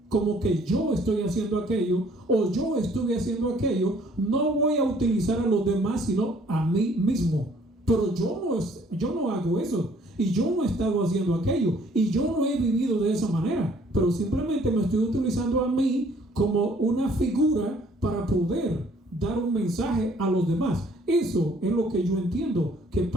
como que yo estoy haciendo aquello o yo estuve haciendo aquello, no voy a utilizar a los demás sino a mí mismo. Pero yo no hago eso y yo no he estado haciendo aquello y yo no he vivido de esa manera, pero simplemente me estoy utilizando a mí como una figura para poder dar un mensaje a los demás. Eso es lo que yo entiendo que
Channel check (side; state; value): both; normal; correlation 0.60